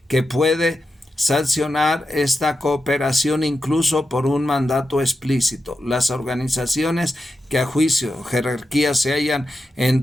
que puede sancionar esta cooperación incluso por un mandato explícito. Las organizaciones que a juicio jerarquía se hallan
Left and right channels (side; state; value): both; normal; correlation 0.89